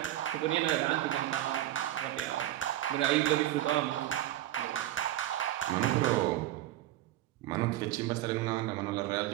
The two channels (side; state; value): left; quieter; 14.2 dB